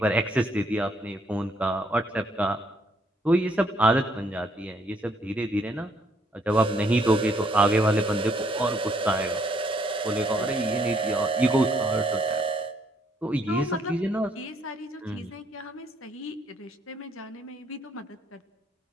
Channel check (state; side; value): normal; both; correlation 0.69